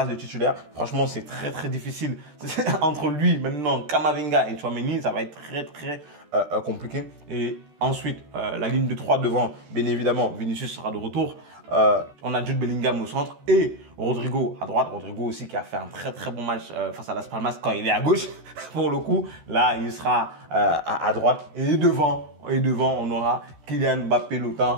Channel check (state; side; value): late; left; 13 ms